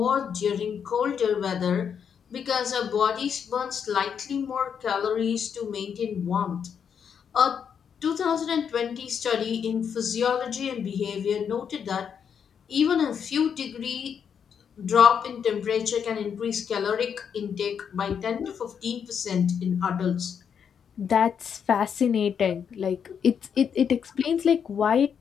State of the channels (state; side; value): quieter; right; 7.4 dB